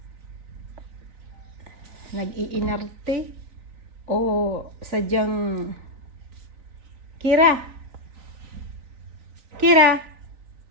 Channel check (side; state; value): left; late; 3.9 ms